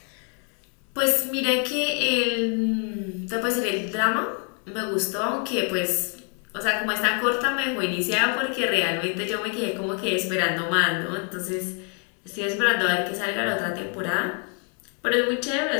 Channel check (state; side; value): quieter; right; 38.9 dB